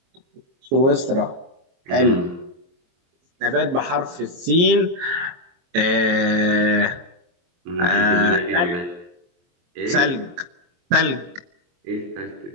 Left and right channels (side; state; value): left; late; 23 ms